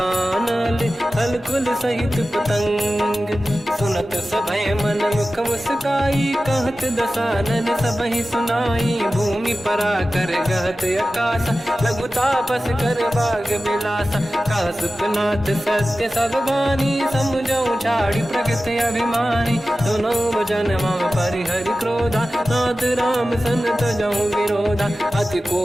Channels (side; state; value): both; normal; correlation 0.95